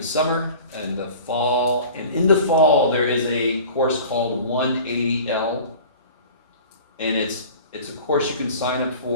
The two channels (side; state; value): both; inverted; correlation -0.42